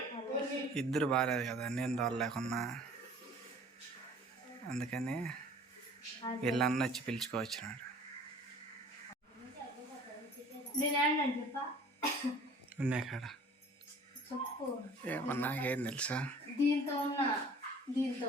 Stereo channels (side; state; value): both; normal; correlation 0.49